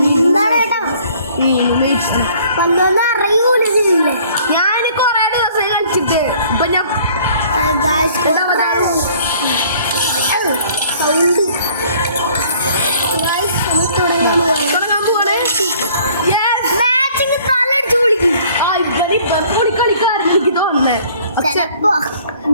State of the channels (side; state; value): both; inverted; correlation -0.56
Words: കേട്ടോ വന്നൊന്നും അറിയൂലില്ലേ. ഞാൻ കുറേ ദിവസമായി കളിച്ചിട്ട്. ഇപ്പൊ ഞാൻ സൗണ്ട് തുടങ്ങാൻ പോവാണ്. മാച്ചിങ് തലടിച്ചു വിളിക്കും. കളിക്കാരൻ എനിക്ക് തോന്നുന്നേ. ചിലപ്പോ